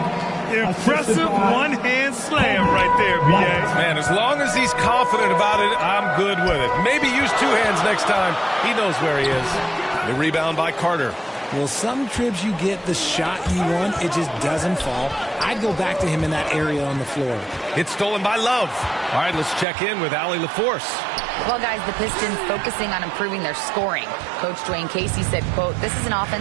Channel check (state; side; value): drops out; left; at 19.7 s